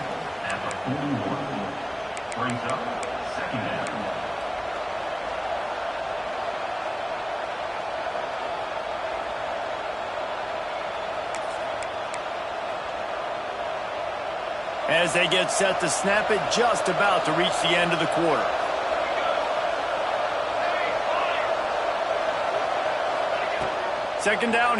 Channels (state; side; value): identical; both; correlation 1.00